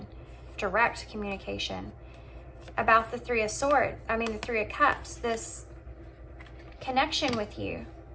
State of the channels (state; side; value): identical; both; correlation 1.00